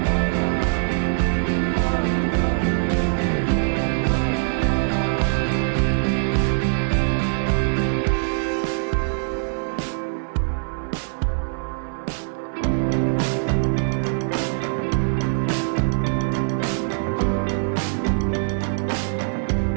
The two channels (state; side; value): silent; left; 64 dB below the other